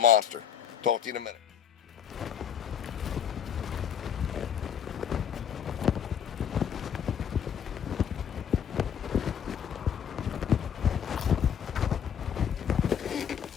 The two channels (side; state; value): right; quieter; 8.4 dB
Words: Talk to you in a minute.